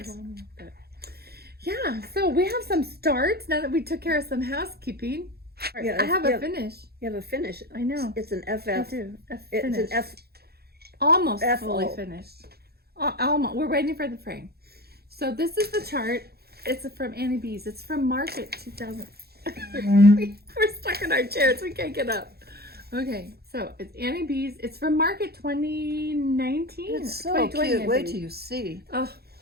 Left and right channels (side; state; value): left; late; 0.46 ms